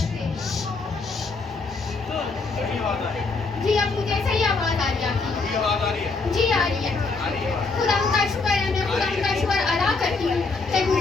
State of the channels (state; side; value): quieter; right; 4.1 dB